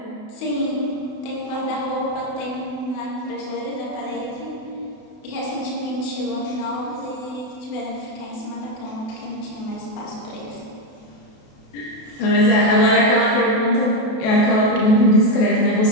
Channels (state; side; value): late; right; 28 ms